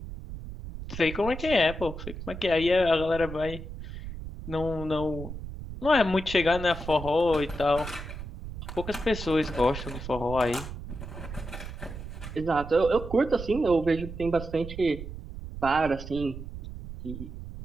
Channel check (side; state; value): right; noise; rumble, 10 dB below the sound